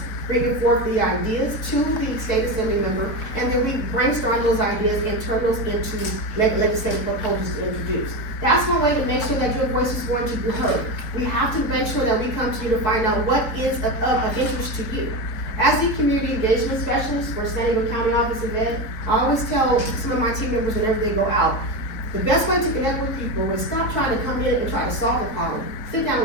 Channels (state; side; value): late; right; 4.5 ms